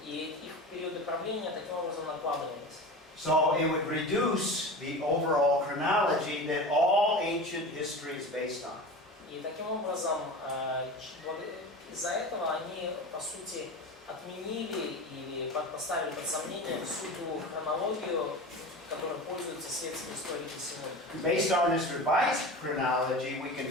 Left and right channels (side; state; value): both; normal; correlation 0.31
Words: и их периоды правления таким образом накладывались. So it would reduce the overall chronology that all ancient history is based on. И таким образом, из-за этого они, по сути, отменили или поставили под сомнение всю ту хронологию, которой пользуются светские историки сегодня. Based on this revised chronology, we can